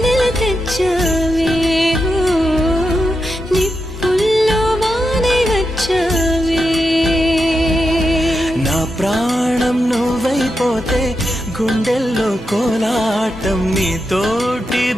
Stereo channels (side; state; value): both; normal; correlation 0.87